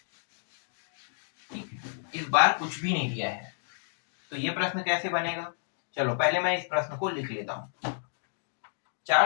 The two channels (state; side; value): silent; right; digital silence